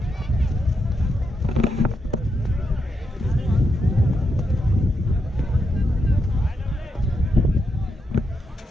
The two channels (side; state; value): both; normal; correlation 0.83